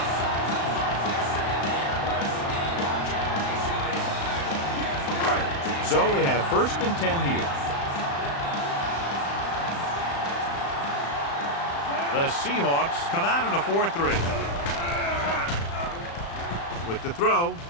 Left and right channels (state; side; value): late; right; 35 ms